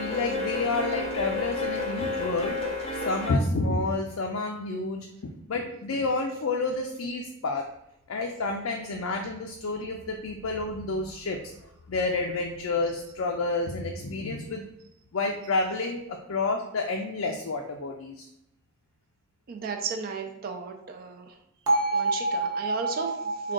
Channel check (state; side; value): normal; both; correlation -0.18